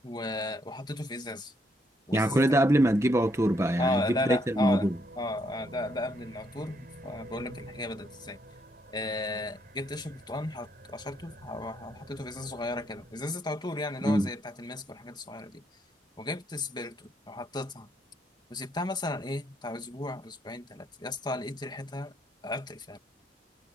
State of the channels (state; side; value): normal; both; correlation 0.73